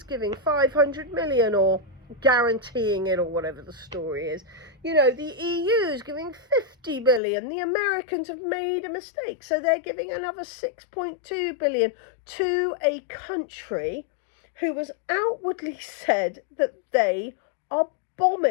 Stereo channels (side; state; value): right; drops out; at 7.2 s